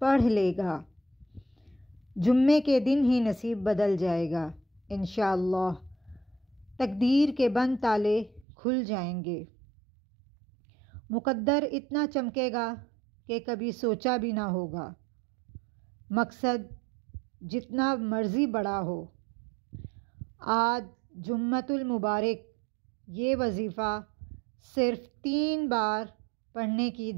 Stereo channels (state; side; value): drops out; left; at 8.5 s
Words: پڑھ لے گا، جمعے کے دن ہی نصیب بدل جائے گا انشاءاللہ۔ تقدیر کے بند تالے کھل جائیں گے، مقدر اتنا چمکے گا کہ کبھی سوچا بھی نہ ہوگا۔ مقصد جتنا مرضی بڑا ہو، آج جمعۃ المبارک یہ وظیفہ صرف 3 بار پڑھنے کی